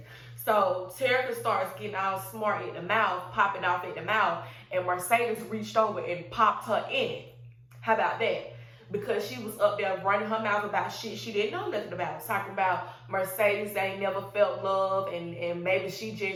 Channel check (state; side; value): identical; both; correlation 1.00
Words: So Terica starts getting all smart at the mouth, popping off at the mouth, and Mercedes reached over and popped her in it. How about that? Because she was up there running her mouth about shit she didn't know nothing about. Talking about Mercedes ain't never felt love, and maybe she